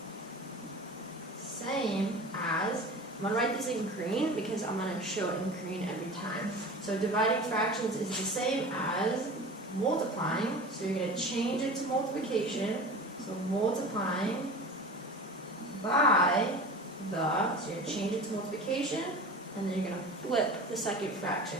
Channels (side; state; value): both; normal; correlation 0.36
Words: same as, I'm going to write this in green because I'm going to show it in green every time. So dividing fractions is the same as multiplying, so you're going to change it to multiplication, so multiplying by the, so you're going to change it to multiplication, and then you're going to flip the second